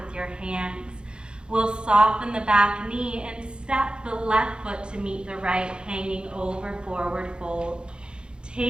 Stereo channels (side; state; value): left; late; 0.051 ms